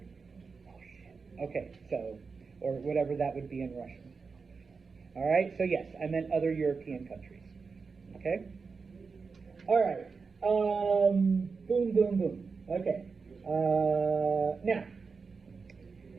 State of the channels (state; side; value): quieter; left; 4.9 dB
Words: oh shit. Okay, so, or whatever that would be in Russian. All right, so yes, I meant other European countries. Okay? All right. Boom, boom, boom. Okay. Now,